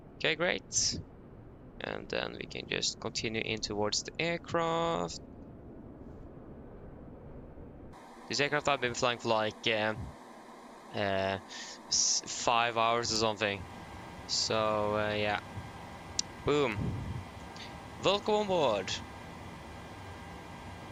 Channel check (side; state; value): both; identical; correlation 1.00